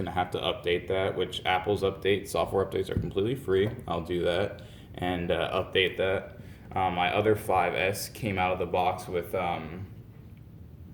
to have to update that, which Apple's software updates are completely free. I'll do that and update that. My other 5S came out of the box with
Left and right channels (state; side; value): identical; both; correlation 1.00